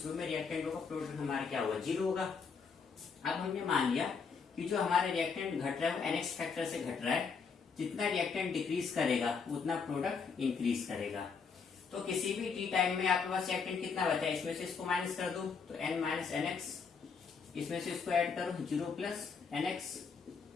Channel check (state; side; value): quieter; right; 5.6 dB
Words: में रिएक्टेंट होगा, प्रोडक्ट हमारा क्या होगा 0 होगा। अब हमने मान लिया कि जो हमारा रिएक्टेंट घट रहा है वो NX फैक्टर से घट रहा है, जितना रिएक्टेंट डिक्रीज करेगा उतना प्रोडक्ट इंक्रीज करेगा। तो तो किसी भी टी टाइम में आपके पास रिएक्टेंट कितना बचा है, इसमें से इसको माइनस कर दो तो n माइनस एन एक्स, इसमें से इसको ऐड करो 0 प्लस एन एक्स